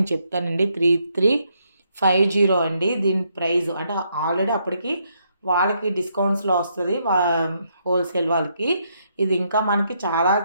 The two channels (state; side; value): inverted; both; correlation -0.75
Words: చెప్తానండి. 3350 అండి దీని ప్రైస్. అంటే ఆల్రెడీ అప్పటికి వాళ్ళకి డిస్కౌంట్స్లో వస్తుంది, హోల్సేల్ వాళ్ళకి. ఇది ఇంకా మనకి చాలా